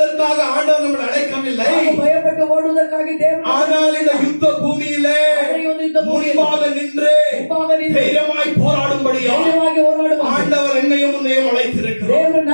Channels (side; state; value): both; inverted; correlation -1.00